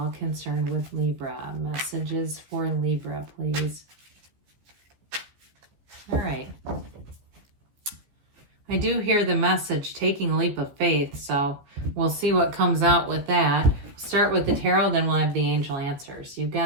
concerned with Libra. Messages for Libra, please. All right. I do hear the message, taking a leap of faith, so we'll see what comes out with that. Start with the tarot, then we'll have the angel answers. You've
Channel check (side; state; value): left; late; 14 ms